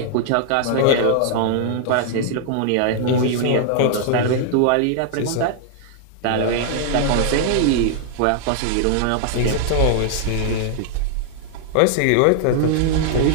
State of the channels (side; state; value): both; different; correlation 0.00